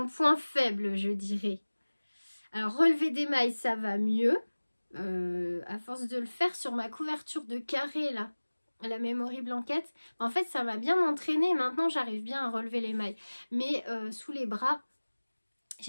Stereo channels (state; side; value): inverted; both; correlation -1.00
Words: faible, je dirais. Alors, relever des mailles, ça va mieux. À force de le faire sur ma couverture de carré, là, la Memory Blanket. En fait, ça m'a bien entraîné. Maintenant, j'arrive bien à relever les mailles. Mais sous les bras,